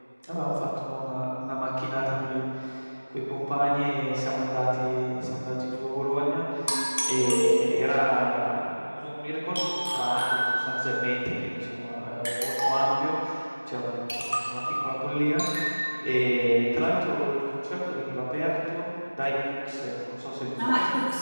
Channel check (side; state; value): both; inverted; correlation -1.00